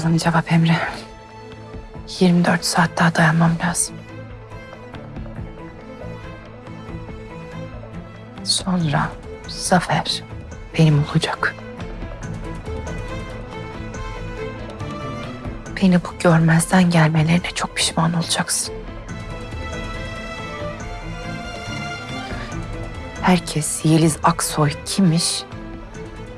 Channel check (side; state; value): both; identical; correlation 1.00